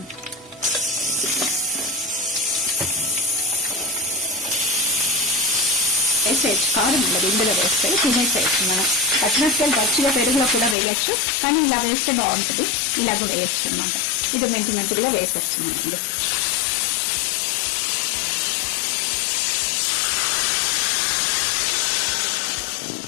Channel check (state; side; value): drops out; right; at 10.8 s